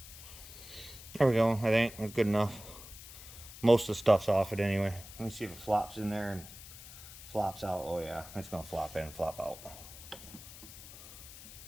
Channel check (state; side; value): noise; left; hiss, 15 dB below the sound